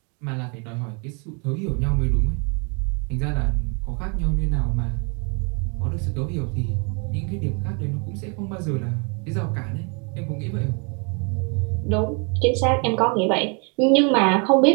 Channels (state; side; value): quieter; left; 35.2 dB